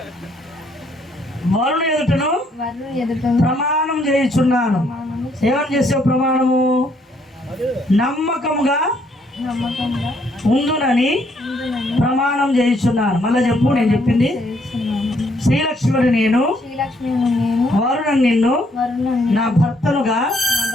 వరుణు ఎదుటను ప్రమాణం చేయించున్నాను. ఏమని చేసావు ప్రమాణము? నమ్మకముగా ఉందునని ప్రమాణం చేయించున్నాను. మళ్ళా చెప్పు. నేను చెప్పింది. శ్రీలక్ష్మిని నేను వరుణను నిన్ను నా భర్తనుగా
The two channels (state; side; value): normal; both; correlation 0.69